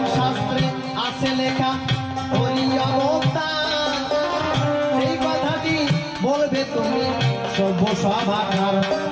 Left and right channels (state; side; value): identical; both; correlation 1.00